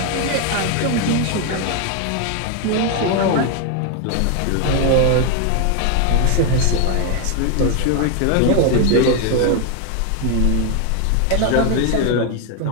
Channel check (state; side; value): different; both; correlation 0.01